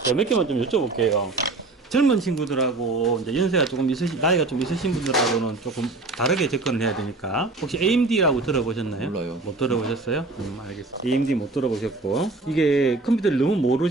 몇 개만 좀 여쭤볼게요. 젊은 친구들하고 이제 연세가 조금 나이가 좀 있으신 분들하고는 조금 다르게 접근을 해야 되니까. 혹시 AMD라고 들어보셨나요? 몰라요. 못 들어보셨어요? 알겠습니다. AMD 못 들어보셨고. 이게 컴퓨터를 너무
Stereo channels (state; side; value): quieter; left; 3.3 dB